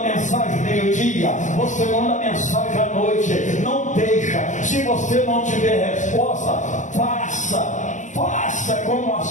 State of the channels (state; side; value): late; right; 0.36 ms